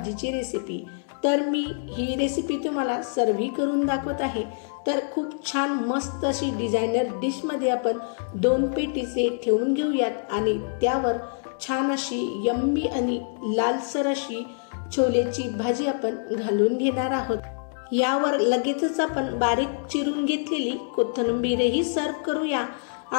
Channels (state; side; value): silent; right; digital silence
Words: रेसिपी। तर मी ही रेसिपी तुम्हाला सर्व्ह करून दाखवत आहे। तर खूप छान मस्त अशी डिझायनर डिश मध्ये आपण 2 पेटीसे ठेवून घेऊयात आणि त्यावर छान अशी यम्मी आणि लालसर अशी छोलेची भाजी आपण घालून घेणार आहोत। यावर लगेचच आपण बारीक चिरून घेतलेली कोथिंबीरही सर्व्ह करूया